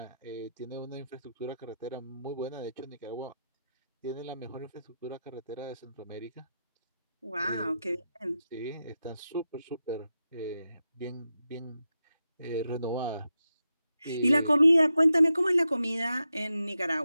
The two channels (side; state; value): both; inverted; correlation -0.88